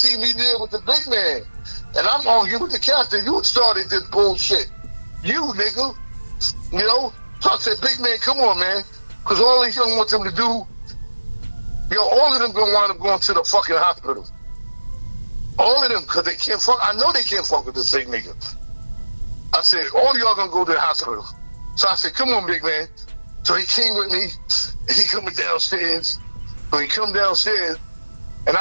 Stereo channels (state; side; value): inverted; both; correlation -1.00